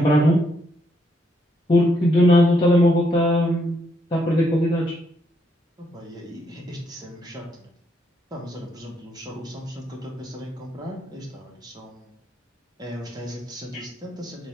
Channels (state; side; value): normal; both; correlation 0.75